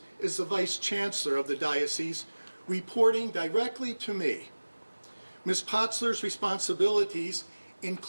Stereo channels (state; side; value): inverted; both; correlation -1.00